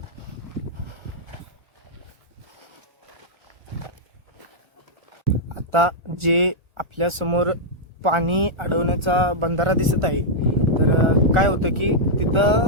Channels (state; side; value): late; left; 1.4 ms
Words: आता जे आपल्या समोर पाणी अडवण्याचा बंधारा दिसत आहे, तर काय होतं की